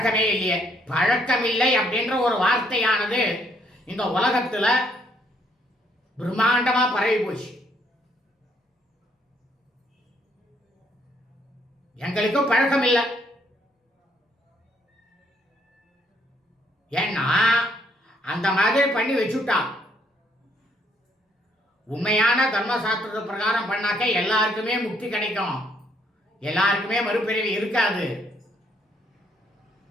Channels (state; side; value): normal; both; correlation 0.69